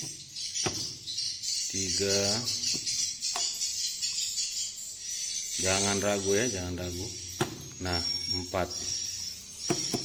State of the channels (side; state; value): both; identical; correlation 1.00